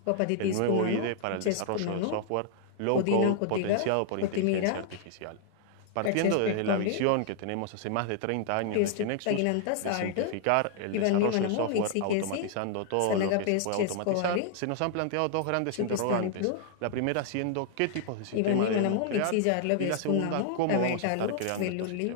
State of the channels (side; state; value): both; different; correlation 0.00